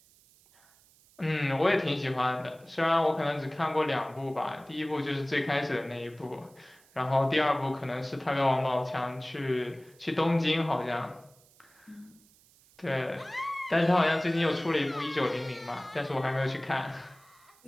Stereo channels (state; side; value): noise; right; hiss, 29 dB below the sound